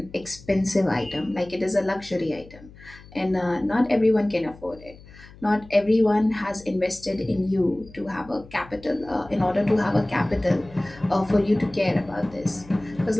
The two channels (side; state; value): left; noise; hum, 21 dB below the sound